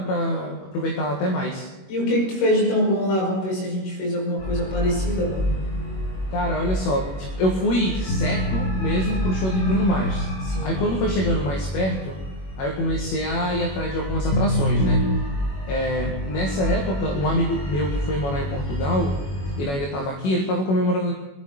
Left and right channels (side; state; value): right; late; 21 ms